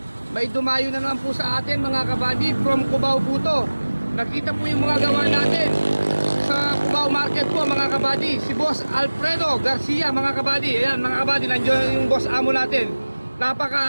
May dumayo na naman po sa atin mga kabady from Cubao po to. Nakita po yung mga gawa natin sa Cubao Market po mga kabady. Si Boss Alfredo Garcia mga kabady. Ayan mga kabady, nandiyan yung boss amo natin.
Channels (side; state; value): both; inverted; correlation -1.00